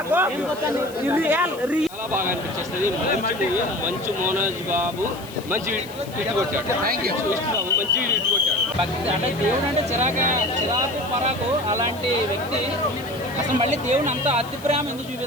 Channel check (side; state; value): left; noise; hiss, 19 dB below the sound